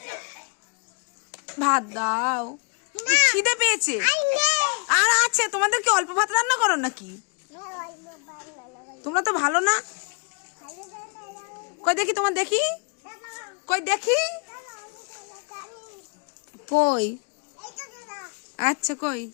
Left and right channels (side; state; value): right; quieter; 39.1 dB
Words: ভাত দাও, খিদে পেয়েছে। আর আছে, তোমাদের কি অল্প ভাত রান্না করো নাকি? তোমরা তো ভালো না। কই দেখি, তোমার দেখি, কই দেখি, কই, আচ্ছা কই